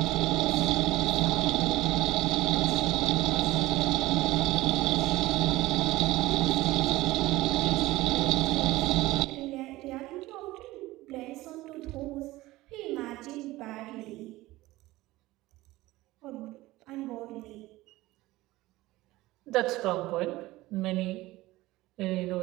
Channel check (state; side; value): quieter; left; 18.3 dB